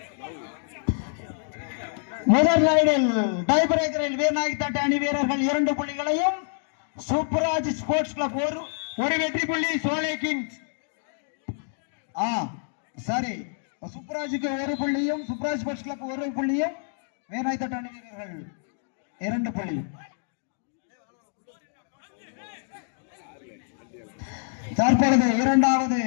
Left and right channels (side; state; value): right; silent; digital silence